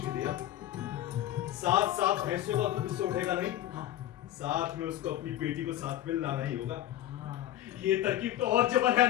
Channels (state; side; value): quieter; right; 13.1 dB